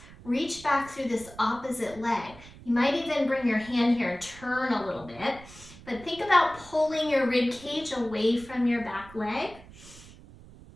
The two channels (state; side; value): noise; right; rumble, 19 dB below the sound